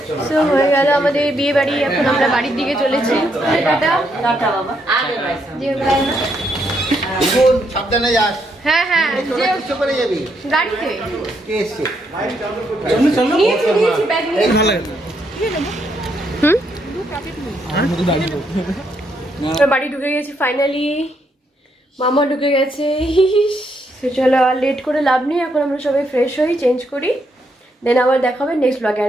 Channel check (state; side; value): normal; both; correlation 0.76